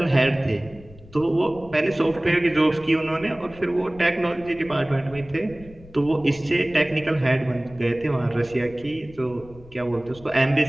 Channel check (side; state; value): left; noise; rumble, 20 dB below the sound